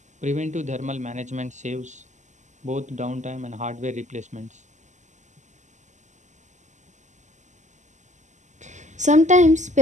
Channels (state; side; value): late; left; 0.34 ms